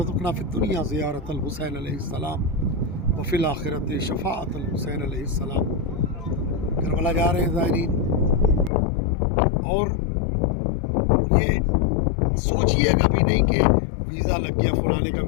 فی الدنیا زیارت الحسین علیہ السلام وفی الآخرت شفاعت الحسین علیہ السلام۔ کربلا جا رہے ہیں زائرین، اور یہ سوچیے گا بھی نہیں کہ ویزا لگ گیا، فلانے کا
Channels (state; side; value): drops out; right; at 8.7 s